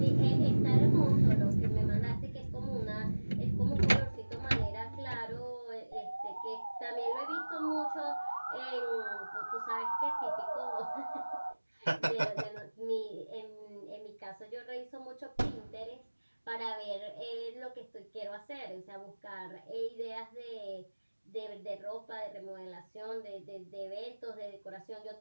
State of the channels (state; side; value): inverted; both; correlation -1.00